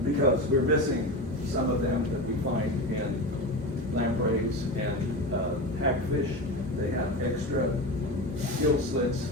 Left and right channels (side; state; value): both; normal; correlation 0.24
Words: Because we're missing some of them that we find in lampreys and hagfish. They have extra gill slits